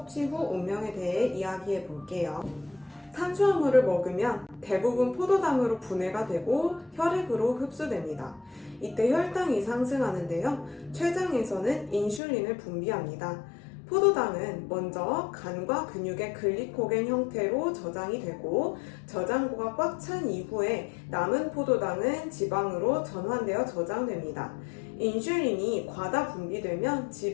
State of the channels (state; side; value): drops out; right; at 12.2 s